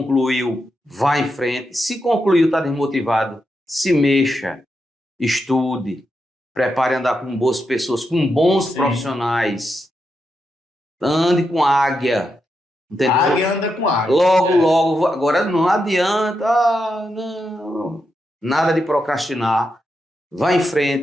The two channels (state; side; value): normal; both; correlation 0.85